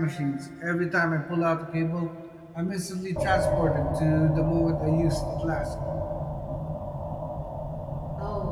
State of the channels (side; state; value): both; identical; correlation 1.00